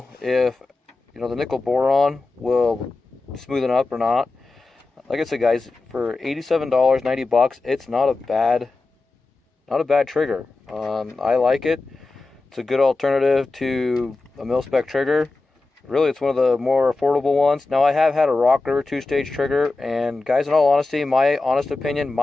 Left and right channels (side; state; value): right; quieter; 3.4 dB